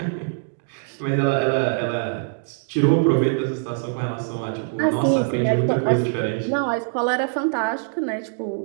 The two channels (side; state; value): left; silent; digital silence